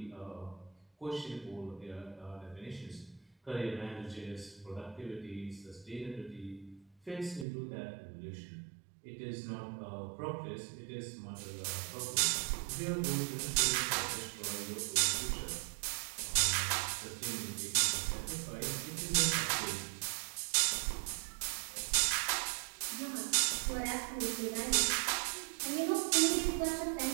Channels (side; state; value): left; drops out; at 7.5 s